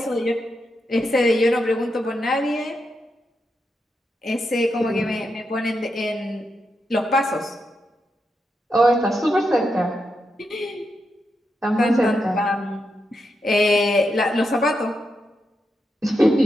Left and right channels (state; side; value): normal; both; correlation 0.85